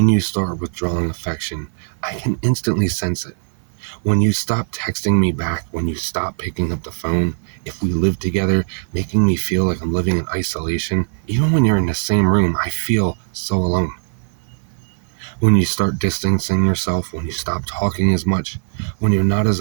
you start withdrawing affection, I can instantly sense it. When you stop texting me back, when you stop picking up the phone, if we live together, making me feel like I'm living in isolation, even when you're in the same room, I feel so alone. When you start distancing yourself, when you stop talking as much, when you're not as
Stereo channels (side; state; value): left; silent; 56 dB below the other